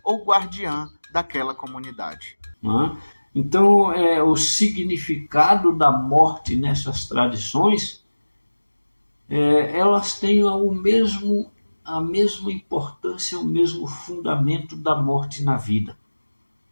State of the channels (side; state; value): both; inverted; correlation -1.00